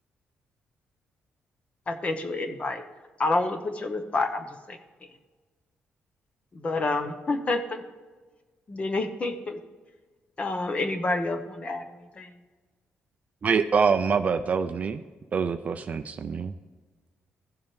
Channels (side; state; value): both; normal; correlation 0.77